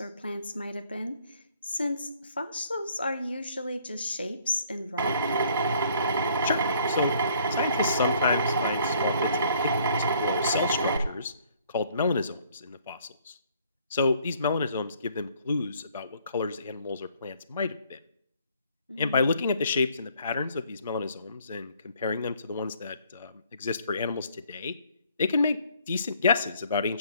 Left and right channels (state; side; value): inverted; both; correlation -0.62